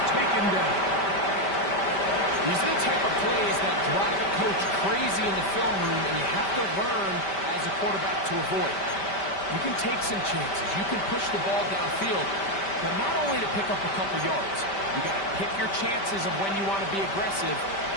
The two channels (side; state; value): right; late; 5.1 ms